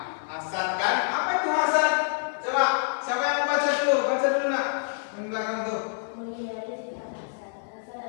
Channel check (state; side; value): silent; right; 60 dB below the other